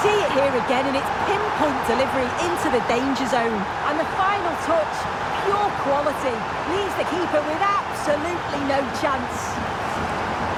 see it here again, and it's pinpoint delivery into the danger zone. And the final touch, pure quality, leaves the keeper with absolutely no chance.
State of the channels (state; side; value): identical; both; correlation 1.00